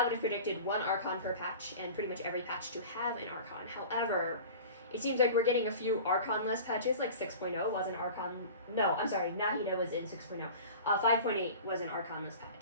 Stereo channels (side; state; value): both; inverted; correlation -0.38